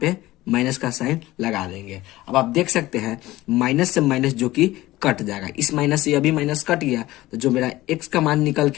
पे माइनस का साइन लगा देंगे। अब आप देख सकते हैं माइनस से माइनस जो कि कट जाएगा, इस माइनस से अभी माइनस कट गया, तो जो मेरा x का मान निकल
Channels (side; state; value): right; quieter; 17.4 dB